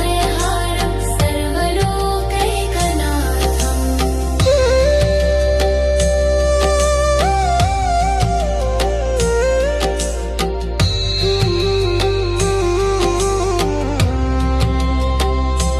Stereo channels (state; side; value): identical; both; correlation 1.00